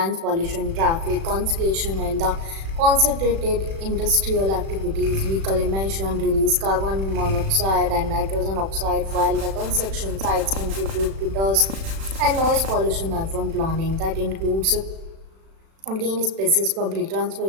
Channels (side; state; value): left; late; 36 ms